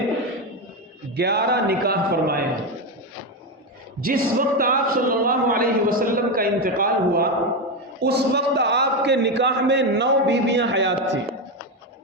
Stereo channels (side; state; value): both; normal; correlation 0.11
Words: 11 نکاح فرمائے ہیں۔ جس وقت آپ صلی اللہ علیہ وسلم کا انتقال ہوا اس وقت آپ کے نکاح میں 9 بیویاں حیات تھیں۔